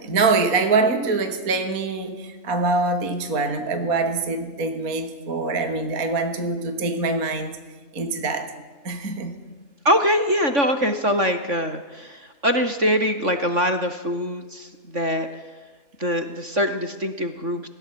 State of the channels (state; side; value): late; left; 3.5 ms